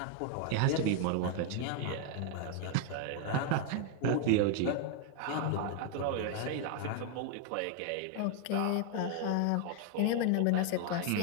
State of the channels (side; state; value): both; different; correlation 0.00